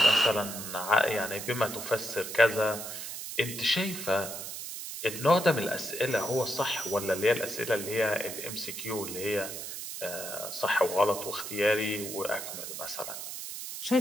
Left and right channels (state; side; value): noise; right; hiss, 8 dB below the sound